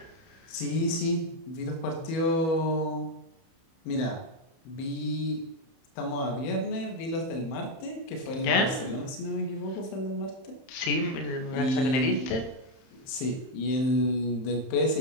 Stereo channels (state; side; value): late; right; 31 ms